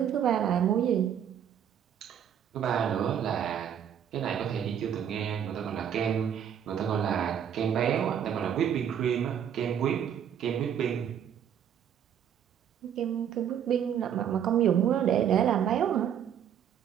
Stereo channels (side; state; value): left; quieter; 9.0 dB